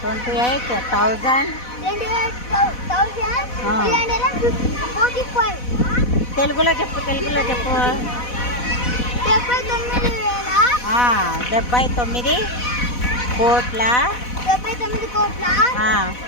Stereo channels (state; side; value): late; right; 4.1 ms